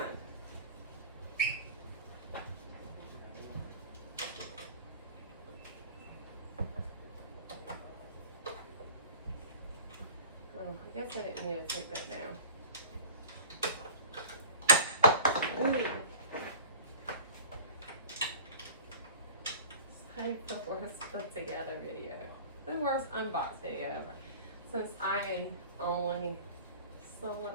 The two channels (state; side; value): inverted; both; correlation -0.40